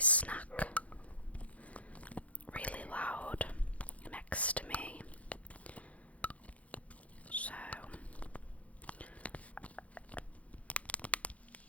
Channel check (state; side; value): late; right; 0.066 ms